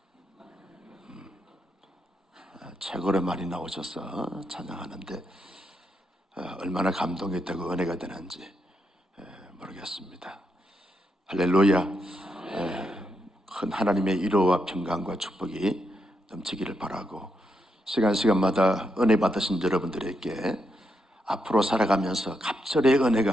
최고로 많이 나오셔서 찬양하는데 얼마나 감동이 되고 은혜가 되는지 모르겠습니다. 할렐루야. 큰 하나님의 위로와 평강과 축복이 넘치기를 바라고, 시간마다 은혜 받으신 여러분들에게 앞으로 살아가면서 갑절의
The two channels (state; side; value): normal; both; correlation 0.82